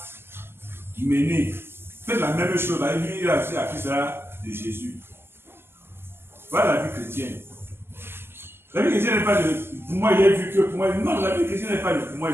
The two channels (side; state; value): left; late; 0.11 ms